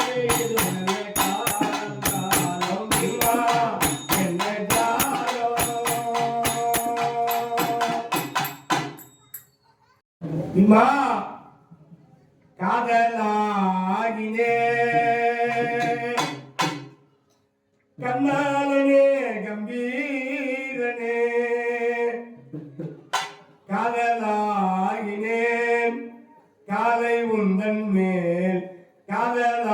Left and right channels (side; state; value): both; identical; correlation 1.00